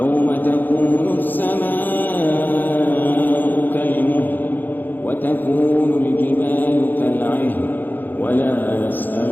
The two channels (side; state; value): right; late; 0.088 ms